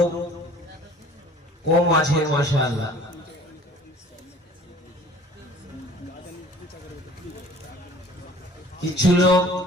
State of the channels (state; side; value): normal; both; correlation 0.50